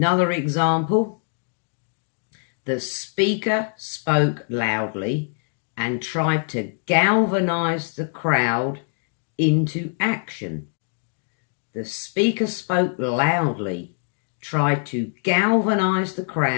example, the speaker spoke loudly and tried to galvanise the crowd into action. The speaker spoke loudly, tried to galvanise the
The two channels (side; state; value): right; silent; 59 dB below the other